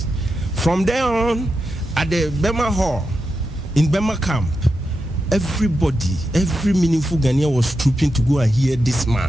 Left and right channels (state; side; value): normal; both; correlation 0.88